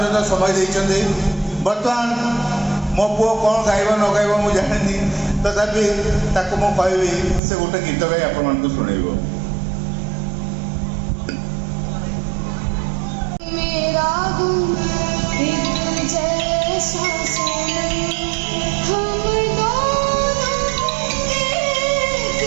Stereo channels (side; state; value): left; drops out; at 7.4 s